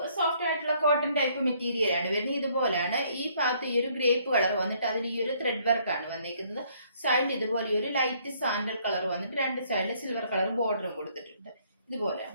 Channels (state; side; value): inverted; both; correlation -0.65